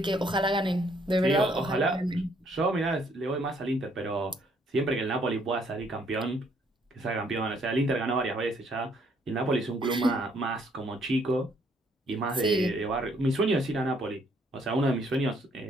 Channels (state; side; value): normal; both; correlation 0.67